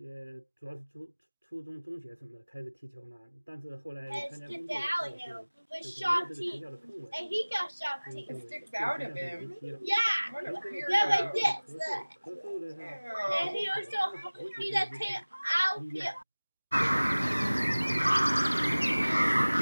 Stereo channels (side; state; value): both; inverted; correlation -1.00